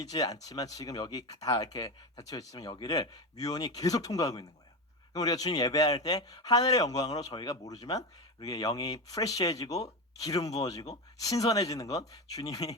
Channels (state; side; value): normal; both; correlation 0.19